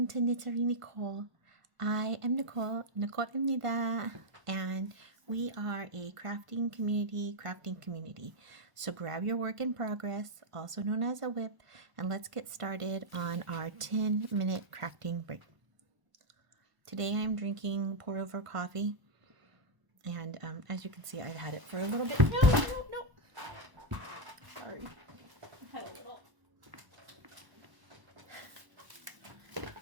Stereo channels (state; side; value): late; left; 1.0 ms